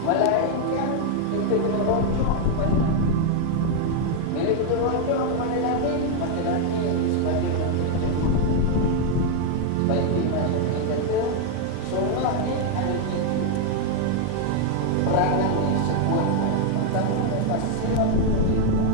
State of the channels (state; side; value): different; both; correlation 0.00